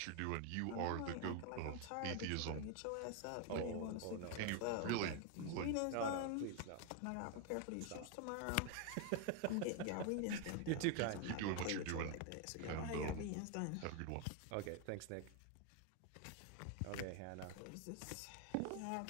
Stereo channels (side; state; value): both; different; correlation 0.01